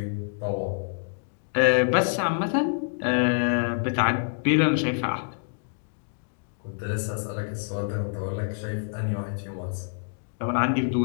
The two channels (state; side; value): silent; right; digital silence